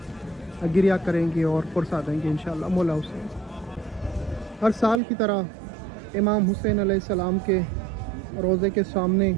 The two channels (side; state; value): left; drops out; at 5.0 s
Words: गिरिया करेंगे और पुरसा देंगे इंशाअल्लाह मौला हुसैन। हर साल की तरह इमाम हुसैन अलैहिस्सलाम के रोज़े के सामने